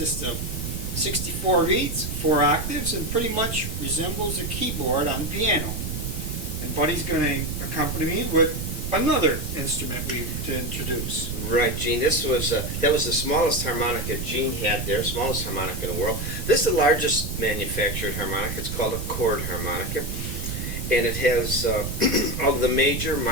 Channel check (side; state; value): right; noise; rumble, 5 dB below the sound